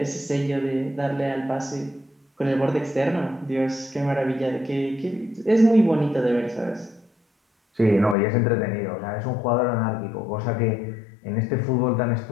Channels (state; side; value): drops out; right; at 8.2 s